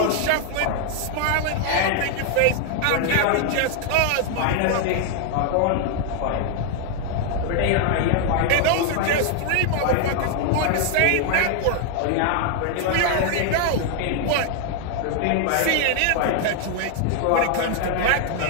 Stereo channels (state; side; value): different; both; correlation 0.00